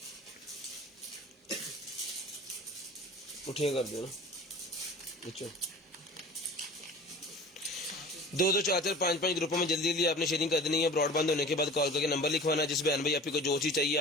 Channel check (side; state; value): both; normal; correlation 0.41